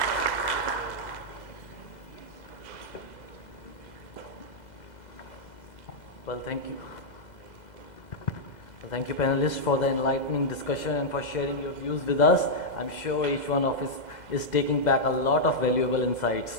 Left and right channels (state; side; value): late; right; 2.0 ms